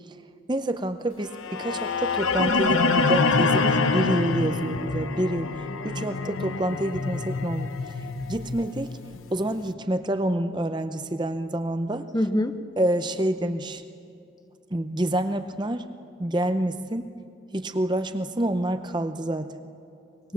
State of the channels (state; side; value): normal; both; correlation 0.52